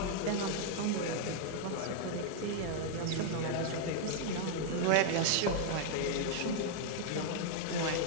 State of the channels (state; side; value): different; both; correlation 0.00